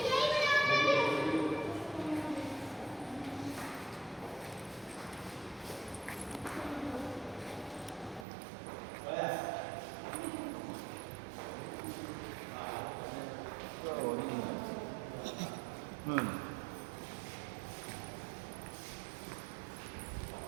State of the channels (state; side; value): drops out; left; at 8.2 s